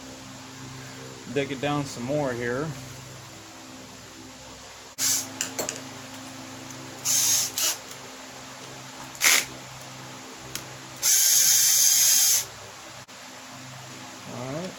digging down some more here.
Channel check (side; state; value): both; identical; correlation 1.00